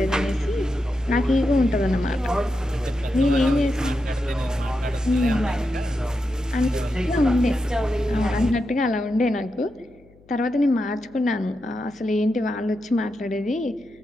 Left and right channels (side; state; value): left; noise; hum, 28 dB below the sound